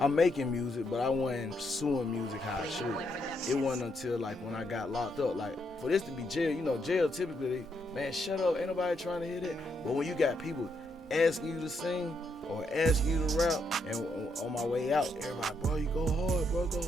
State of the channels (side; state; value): both; normal; correlation 0.77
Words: making music, but I wasn't pursuing music how I should. It wasn't until like when I got locked up, like for this to be jail, you know, jail typically, man, shut up, ain't nobody trying to hear that. But when you got people asking you to sing or asking you to rap, and on my way out, everybody, bro, you go hard, bro, go